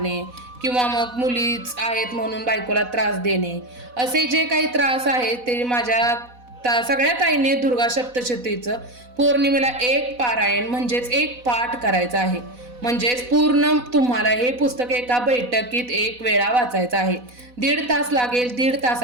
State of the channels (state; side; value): late; left; 4.1 ms